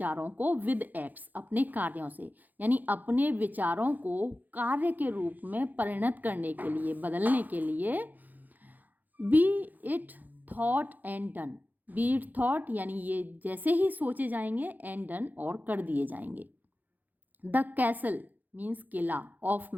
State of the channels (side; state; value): left; late; 0.083 ms